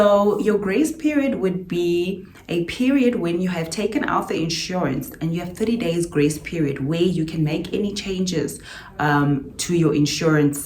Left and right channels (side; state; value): both; identical; correlation 1.00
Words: your grace period would be a period when you have taken out the insurance and you have 30 days grace period where you can make any changes to your